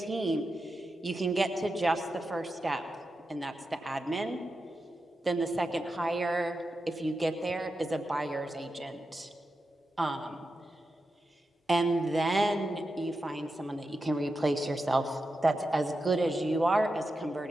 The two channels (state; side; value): normal; both; correlation 0.89